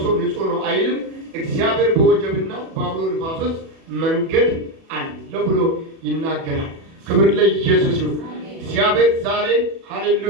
ሰው ንጹሕ ነው አይልም። እግዚአብሔር በወጀብና በአውሎ ነፋስ ውስጥ መንገድ አለ ብሎ ይናገራል። ክብር ለኢየሱስ ይሁን። እግዚአብሔር ዛሬ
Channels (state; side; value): late; left; 37 ms